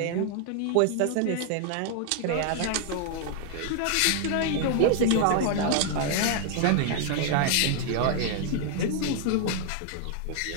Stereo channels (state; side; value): different; both; correlation 0.00